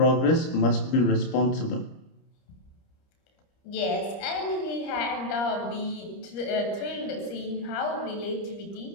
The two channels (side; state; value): right; late; 30 ms